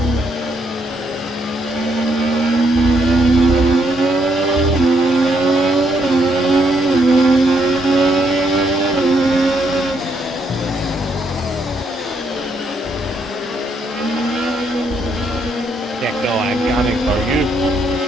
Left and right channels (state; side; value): normal; both; correlation 0.73